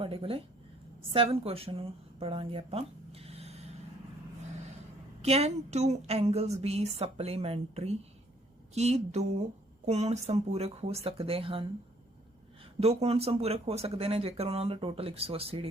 कोले। 7th क्वेश्चन नूं पढ़ांगे आपां। Can two angles be supplementary? की दो कोण संपूरक हो सकते हैं? दो कोण संपूरक हो सकते हैं जेकर उन्होंने टोटल 180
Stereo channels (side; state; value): both; normal; correlation 0.63